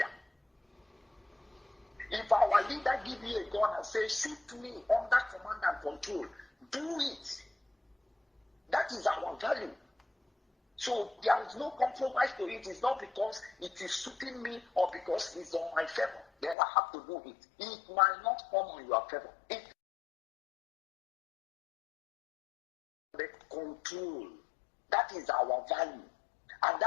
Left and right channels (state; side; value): drops out; right; at 16.6 s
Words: If our leader give you a gun and say, shoot me under command and control, do it. That is our value. So there is no compromise to it. It's not because it is suiting me or because it's on my favor. Then I have to do it. It might not come on your favor. The control. That is our value. And